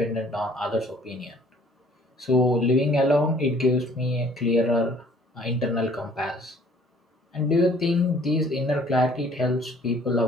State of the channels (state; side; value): normal; both; correlation 0.56